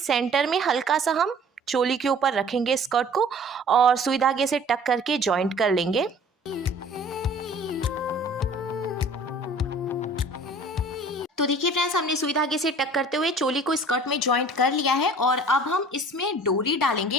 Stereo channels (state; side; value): normal; both; correlation 0.49